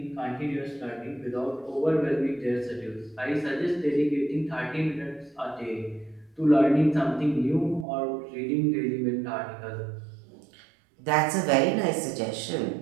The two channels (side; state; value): left; drops out; at 7.9 s